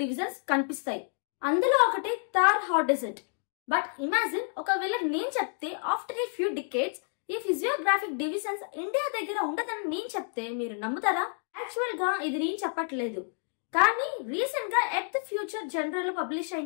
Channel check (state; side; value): silent; right; 57 dB below the other